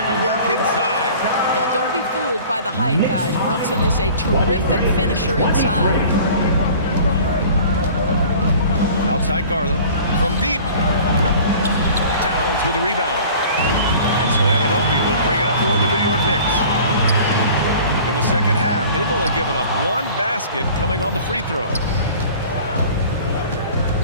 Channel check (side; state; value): both; inverted; correlation -0.45